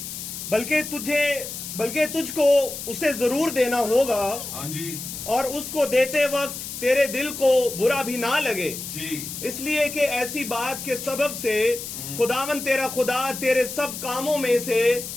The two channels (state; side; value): noise; left; hiss, 8 dB below the sound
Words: बल्कि तुझको उसे जरूर देना होगा। हाँ जी। और उसको देते वक्त तेरे दिल को बुरा भी ना लगे जी, इसलिए कि ऐसी बात के सबब से खुदावन तेरा खुदा तेरे सब कामों